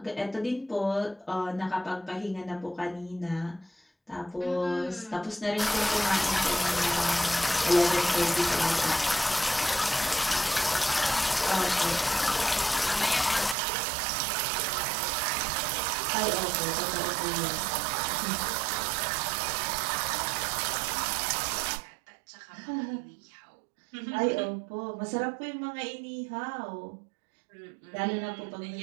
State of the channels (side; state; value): left; drops out; at 13.6 s